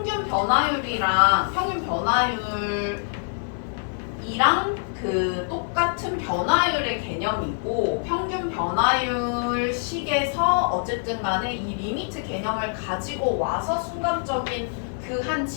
변화율이랑 그 똑같은 변화율의 개념이고 평균 변화율 식에서 어쨌든 간에 이 리미트 개념을 가지고 와서 순간적인 그 한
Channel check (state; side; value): silent; right; digital silence